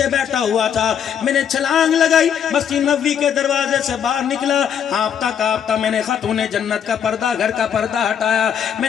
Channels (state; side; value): quieter; right; 8.4 dB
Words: بیٹھا ہوا تھا، میں نے چھلانگ لگائی، مسجد نبوی کے دروازے سے باہر نکلا، ہانپتا کانپتا میں نے خاتون جنت کا پردہ، گھر کا پردہ ہٹایا. میں